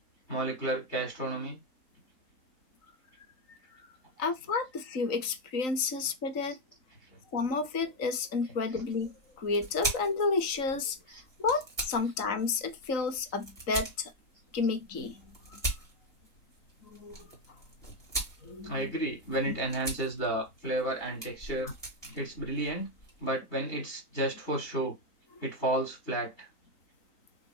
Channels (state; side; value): late; right; 3.9 ms